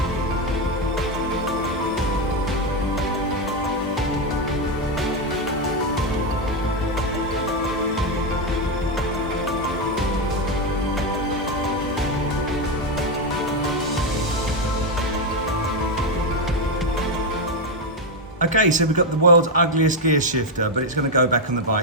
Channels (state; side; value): normal; both; correlation 0.06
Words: Okay, so we've got the world's ugliest gear shifter, but it's going to go back on the